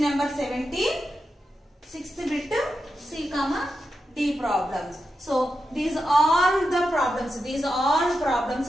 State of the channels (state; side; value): normal; both; correlation 0.88